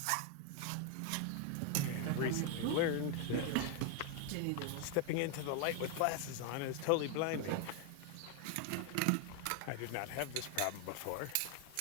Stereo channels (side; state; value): both; different; correlation 0.00